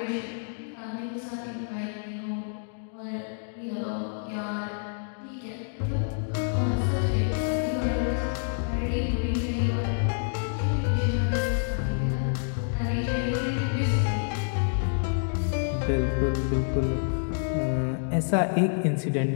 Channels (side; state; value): right; silent; digital silence